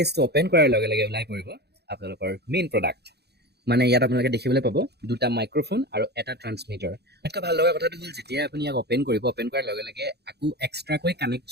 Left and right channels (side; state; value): left; late; 0.48 ms